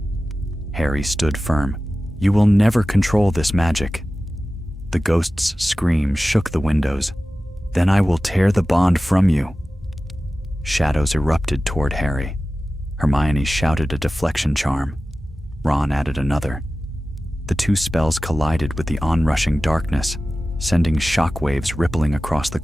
Harry stood firm. "You will never control this magic." The ghost's scream shook the windows. "Then I will tear the bond from you." Shadows erupted toward Harry. Hermione shouted a deflection charm. Ron added another. The two spells collided with the onrushing darkness, sending shockwaves rippling across the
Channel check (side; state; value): both; normal; correlation 0.95